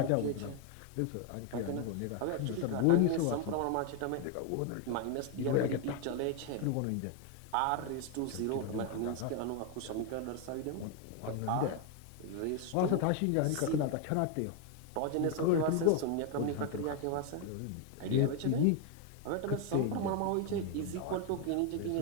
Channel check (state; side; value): different; both; correlation 0.01